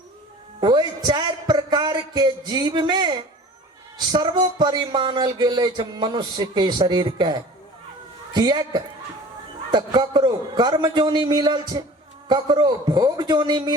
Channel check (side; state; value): both; normal; correlation 0.43